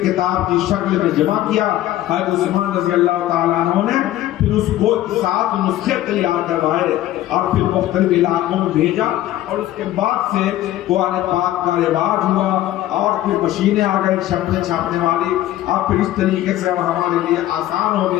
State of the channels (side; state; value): right; quieter; 14.0 dB